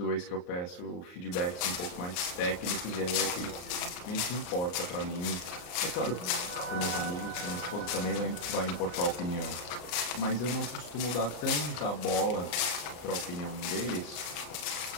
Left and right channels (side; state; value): right; late; 34 ms